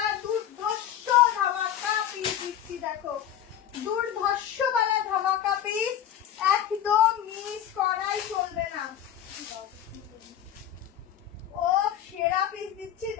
দুর্ধর্ষ ধামাকা পিস দিচ্ছি, দেখো দুর্ধর্ষ वाला ধামাকা পিস, একদম মিস করাই চলবে না। ও সেরা পিস দিচ্ছি,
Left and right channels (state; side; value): quieter; right; 10.4 dB